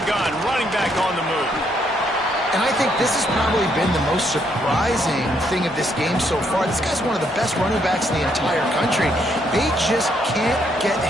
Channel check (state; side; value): normal; both; correlation 0.73